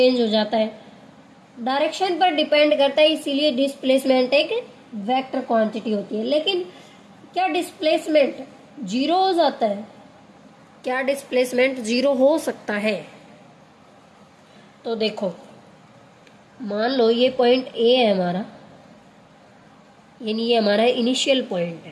हो जाता है। डायरेक्शन पर डिपेंड करता है, इसीलिए डिस्प्लेसमेंट एक वेक्टर क्वांटिटी होती है। लेकिन क्या डिस्प्लेसमेंट जीरो हो जाता है? क्या डिस्प्लेसमेंट 0 हो सकता है? तो देखो, मान लो ये पॉइंट ए है हमारा, यानी ये हमारा इनिशियल पॉइंट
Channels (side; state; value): both; identical; correlation 1.00